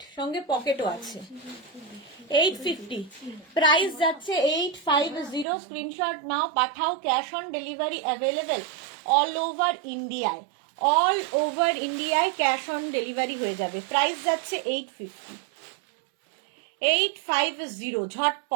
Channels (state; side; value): drops out; left; at 5.5 s